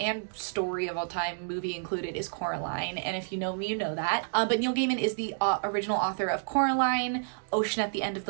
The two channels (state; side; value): silent; left; digital silence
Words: story of all time, movie included, is Coraline. And if you know me, you know that. But Neil Gaiman is the original author of Coraline, Ocean at the End of